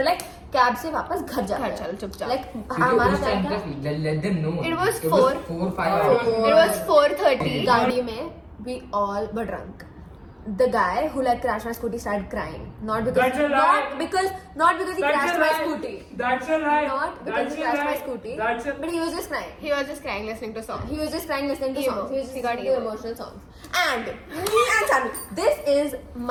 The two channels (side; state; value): both; identical; correlation 1.00